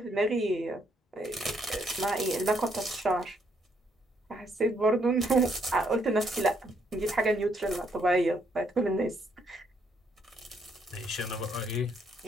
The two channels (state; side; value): normal; both; correlation 0.72